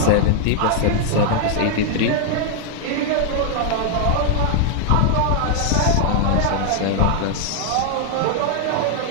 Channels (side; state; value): both; different; correlation 0.00